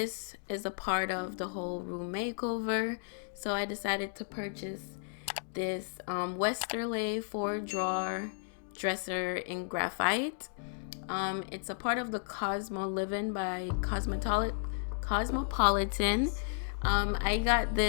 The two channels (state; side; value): silent; right; digital silence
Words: is a part of the whole room makeover. So I decided to purchase this Westerleigh 4-drawer dresser in graphite. It's a part of the Cosmoliving by Cosmopolitan. I got